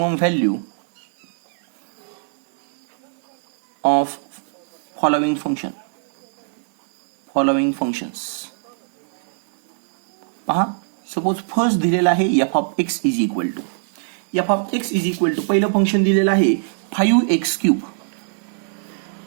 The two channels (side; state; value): left; silent; 65 dB below the other